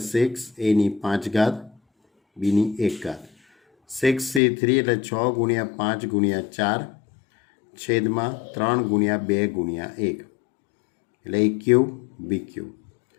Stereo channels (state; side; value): drops out; right; at 4.4 s